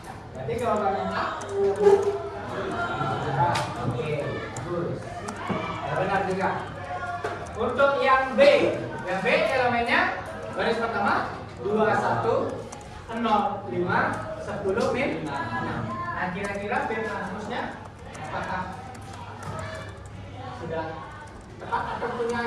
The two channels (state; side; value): identical; both; correlation 1.00